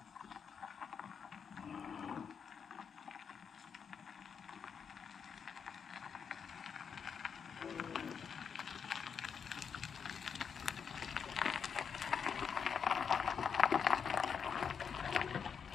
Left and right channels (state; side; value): quieter; right; 6.8 dB